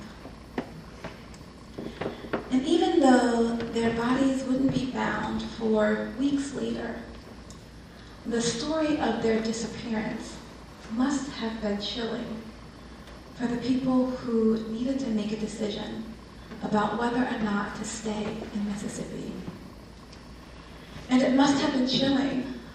And even though their bodies wouldn't be found for weeks later, the story of their disappearance must have been chilling for the people who needed to make a decision about whether or not to stay in Mississippi. And it must have been chilling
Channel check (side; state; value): both; identical; correlation 1.00